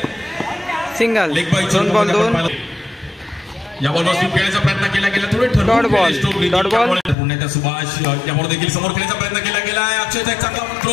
सिंगल. Leg bye 2 ball 2. या बॉलवर खेळायचा प्रयत्न केला गेला. थोडे डॉट बॉल. Dot ball. पुण्याच्या सुभाष या बॉल देखील समोर खेळायचा प्रयत्न केला गेला. अक्षयचा एक चांगला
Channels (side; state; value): right; drops out; at 7.2 s